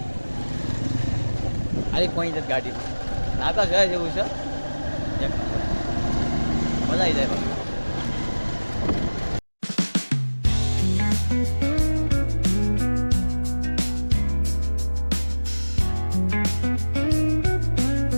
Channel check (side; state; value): both; inverted; correlation -1.00